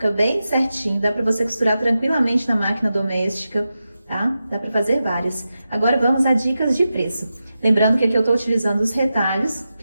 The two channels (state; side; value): inverted; both; correlation -0.91